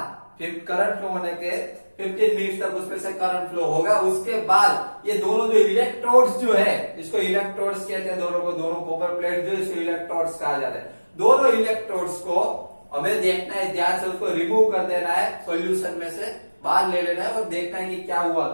करंट फ्लो होने के 15 मिनट तक उसमें से करंट फ्लो होगा। उसके बाद ये दोनों जो इलेक्ट्रोड्स जो है, इसको इलेक्ट्रोड्स कहते हैं दोनों को, दोनों कॉपर प्लेट जो इसको इलेक्ट्रोड्स कहा जाता है। दोनों इलेक्ट्रोड्स को हमें देखना है, ध्यान से उसको रिमूव कर देना है, सॉल्यूशन में से बाहर ले लेना है और देखना है कि क्या हुआ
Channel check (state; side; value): inverted; both; correlation -1.00